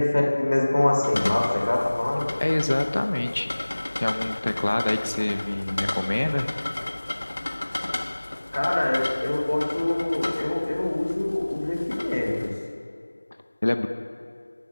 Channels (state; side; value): inverted; both; correlation -1.00